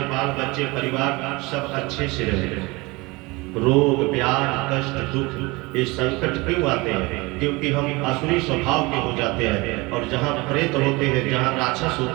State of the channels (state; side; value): quieter; left; 24.1 dB